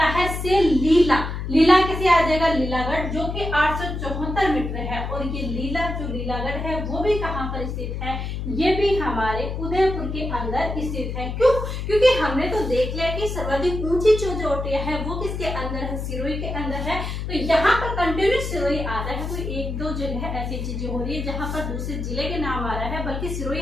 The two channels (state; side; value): noise; left; hum, 4 dB below the sound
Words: है से लीला, लीला कैसे आ जाएगा, लीलागढ़ जो कि 874 मीटर है और ये लीला जो लीलागढ़ है वो भी कहाँ पर स्थित है, ये भी हमारे उदयपुर के अंदर स्थित है। क्यों, क्योंकि हमने तो देख लिया कि सर्वाधिक ऊंची जो चोटियां है वो किसके अंदर है, सिरोही के अंदर है। तो यहाँ पर कंटिन्यूस सिरोही आ रहा है, कोई एक दो जगह ऐसी चीजें हो रही है जहाँ पर दूसरे जिले के नाम आ रहा है, बल्कि सिरोही